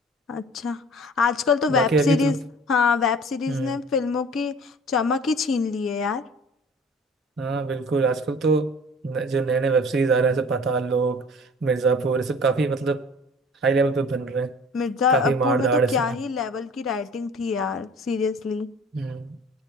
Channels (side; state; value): both; normal; correlation 0.46